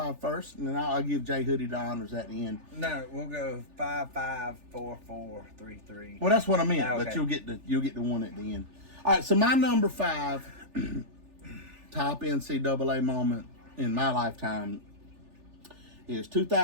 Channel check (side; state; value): left; late; 3.4 ms